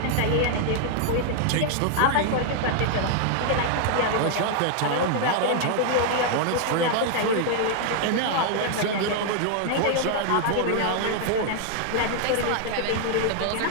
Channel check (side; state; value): both; different; correlation 0.00